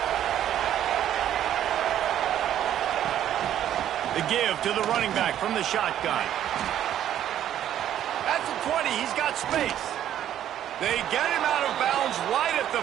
The give to the running back from the shotgun. At the 20, he's got space. They get him out of bounds right at the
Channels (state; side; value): quieter; left; 11.1 dB